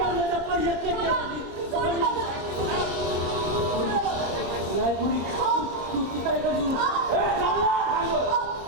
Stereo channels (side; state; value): left; late; 27 ms